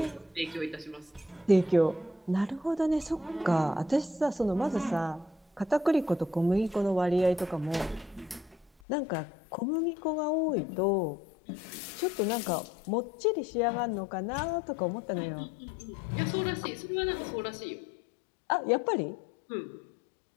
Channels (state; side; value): drops out; right; at 8.7 s